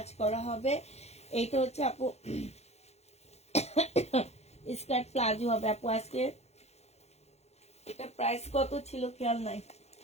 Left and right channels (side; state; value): right; late; 0.31 ms